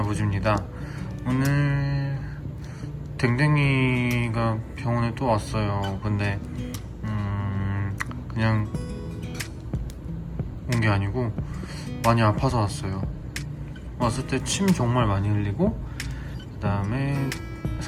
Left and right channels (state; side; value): identical; both; correlation 1.00